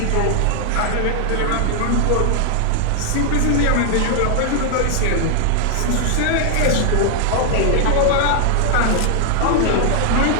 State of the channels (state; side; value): different; both; correlation 0.00